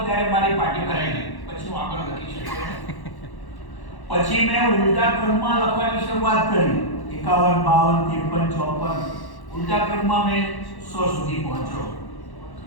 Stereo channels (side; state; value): right; late; 1.1 ms